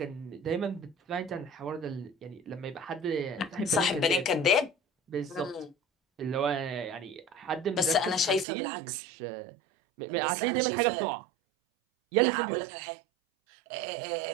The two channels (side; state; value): left; drops out; at 8.5 s